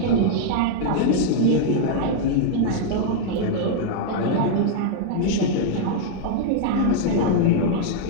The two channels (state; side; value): different; both; correlation -0.01